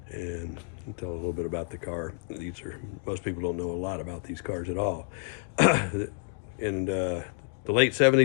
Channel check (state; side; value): silent; right; 58 dB below the other